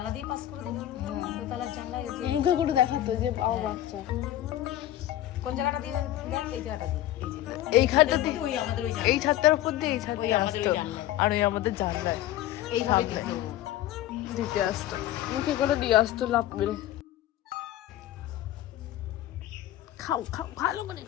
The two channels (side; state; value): right; quieter; 13.6 dB